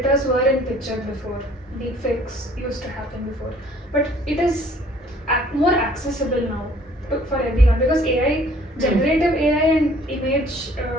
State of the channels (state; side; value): normal; both; correlation 0.56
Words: were in picture before. Deepfakes used to happen before, but it is more accessible now for everyone because AI, generative AI and image